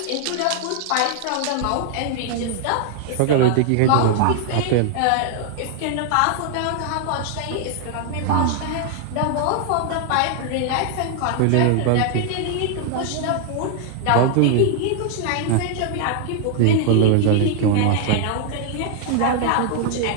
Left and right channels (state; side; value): different; both; correlation 0.00